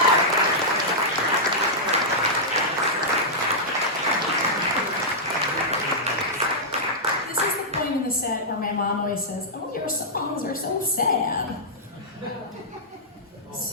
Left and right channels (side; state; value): both; normal; correlation -0.10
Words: This is the point in the set where my mom always says, "Oh, your songs are so sad."